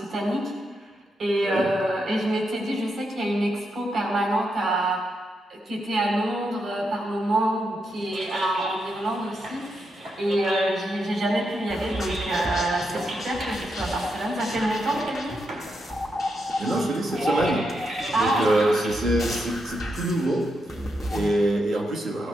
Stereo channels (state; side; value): normal; both; correlation 0.83